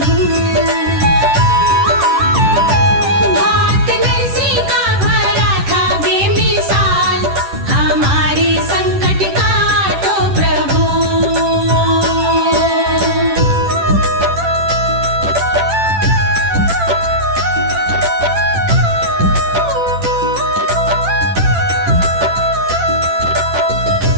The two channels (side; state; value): left; late; 10 ms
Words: भात नरसी का भरा था बेमिसाल, हमारे संकट का तो प्रभु।